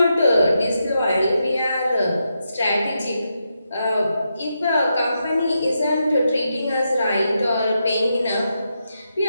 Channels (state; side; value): inverted; both; correlation -0.84